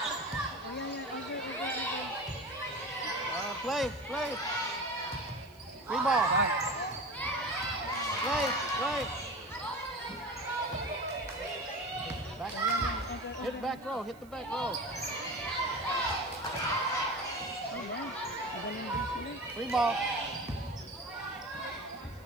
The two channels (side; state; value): right; noise; hiss, 27 dB below the sound